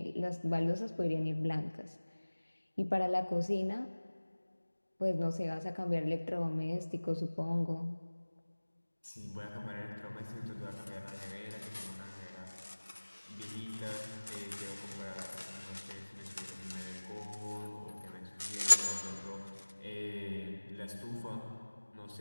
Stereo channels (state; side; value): inverted; both; correlation -1.00